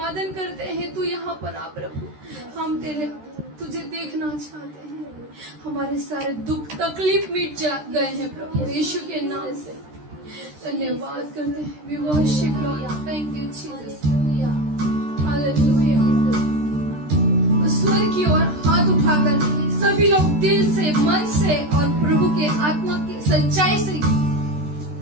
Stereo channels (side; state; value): left; late; 13 ms